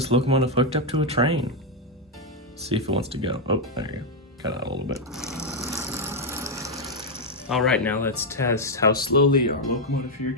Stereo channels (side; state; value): both; normal; correlation 0.01